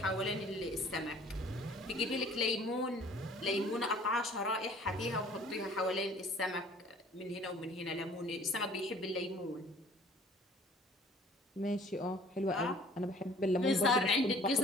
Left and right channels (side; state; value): both; normal; correlation 0.52